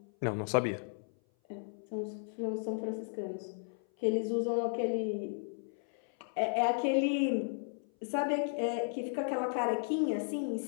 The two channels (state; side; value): silent; right; 55 dB below the other